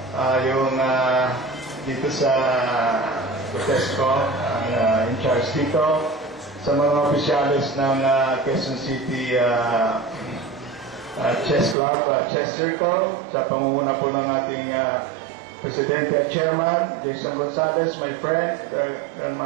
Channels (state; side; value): drops out; left; at 11.8 s